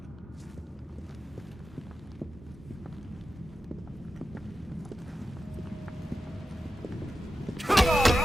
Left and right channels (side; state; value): both; normal; correlation 0.91